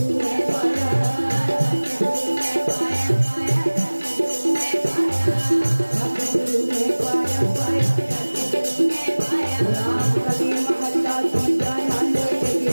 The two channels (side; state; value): both; inverted; correlation -1.00